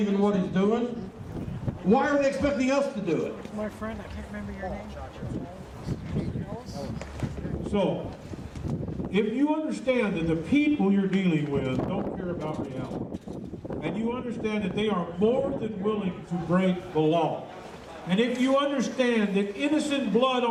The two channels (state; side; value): identical; both; correlation 1.00